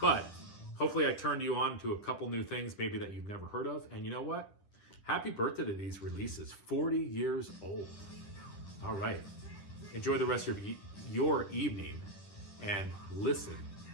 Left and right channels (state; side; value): late; right; 10 ms